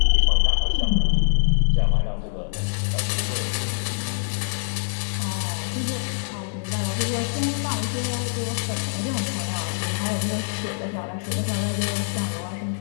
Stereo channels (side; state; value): right; silent; 62 dB below the other